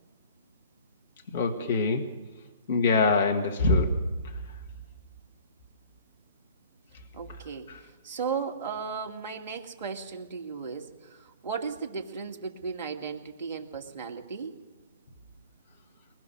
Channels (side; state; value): both; inverted; correlation -0.46